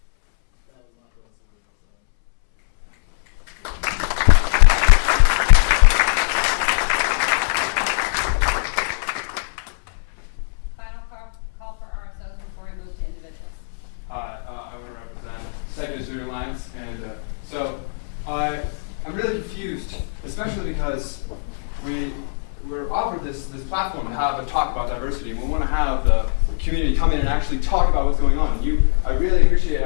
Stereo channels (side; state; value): right; silent; 65 dB below the other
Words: that was my first word. Final call for RSOs before we move to individuals. I want to represent Second Student Alliance, and so I'm really confused, especially because we're offered this platform to have a talk about diversity, and we want to have the community come in and actually talk about what's going on. I really appreciate